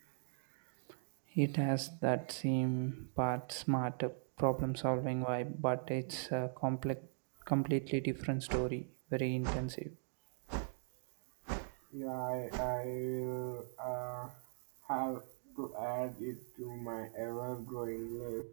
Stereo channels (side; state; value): left; silent; digital silence